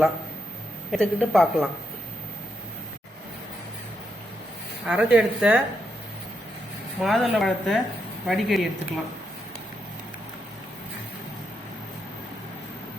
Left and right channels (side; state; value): both; normal; correlation 0.81